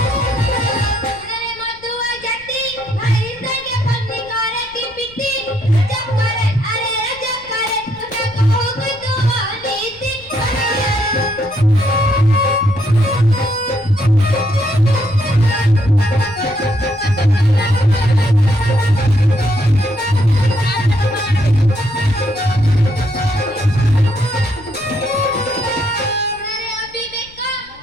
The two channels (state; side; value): noise; left; rumble, 24 dB below the sound